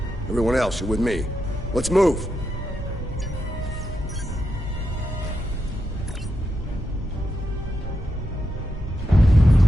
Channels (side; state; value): both; normal; correlation 0.85